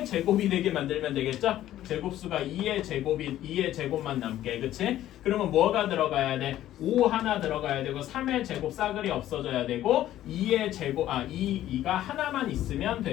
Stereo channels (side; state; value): right; quieter; 13.1 dB